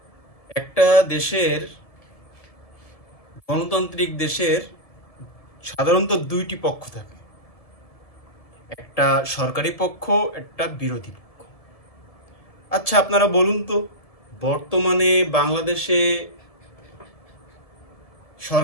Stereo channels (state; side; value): late; right; 1.7 ms